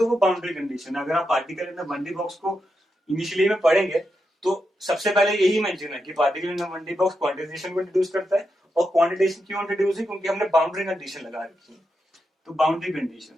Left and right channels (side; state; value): both; normal; correlation 0.86